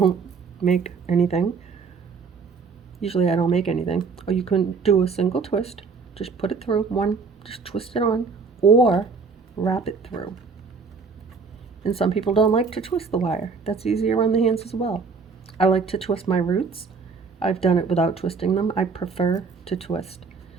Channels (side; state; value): left; quieter; 5.0 dB